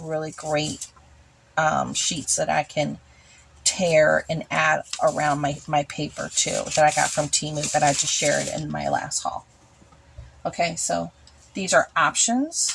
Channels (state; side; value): identical; both; correlation 1.00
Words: great sheets that I can tear and add around my paper too, that I got from Temu, that I just shared in my last haul. Okay, so these are